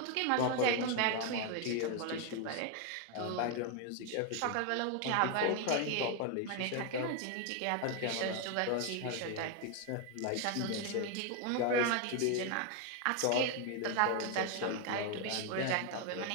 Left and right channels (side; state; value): both; different; correlation 0.01